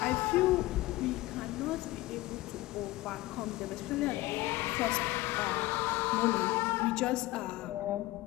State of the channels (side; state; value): right; quieter; 18.4 dB